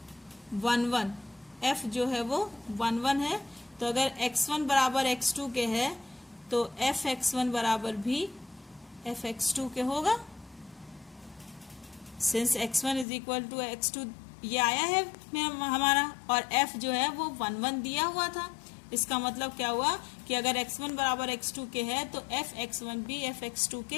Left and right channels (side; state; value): right; drops out; at 13.1 s